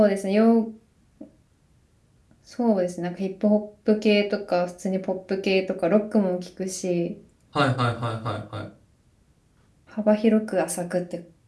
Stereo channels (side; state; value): both; identical; correlation 1.00